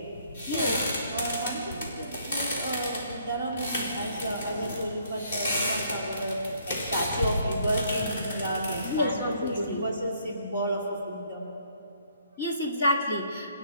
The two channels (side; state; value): both; inverted; correlation -0.65